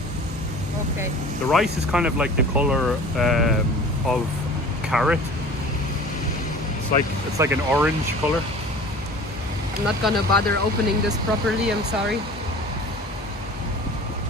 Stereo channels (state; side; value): normal; both; correlation 0.42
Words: Okay. The rice is kind of like the color of carrot. It's like an orange color. I'm not gonna bother opening this properly, I'm sorry.